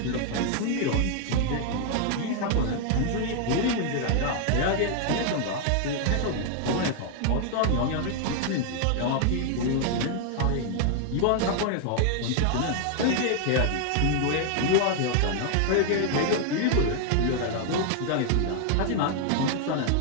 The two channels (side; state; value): both; different; correlation 0.00